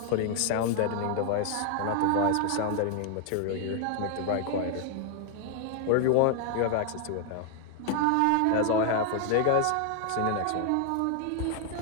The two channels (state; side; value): different; both; correlation 0.00